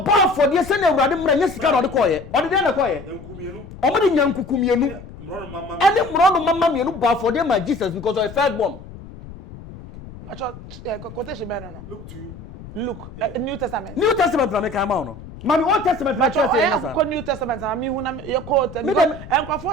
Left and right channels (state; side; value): noise; left; rumble, 15 dB below the sound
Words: ba afode se na awurade mra nya sika na ode ko ye. Ode de na ko ye. enkumienu. O mo de nya nkukumienu. Mro mama. Any mro no mama mienu ba afode ma Jesus because of first born. Acho quotation be no. Look to you. Look, New Testament. New Testament na me kan ma no. Mami Old Testament na church say na sa. New Testament na me hu na ye quote. Me dem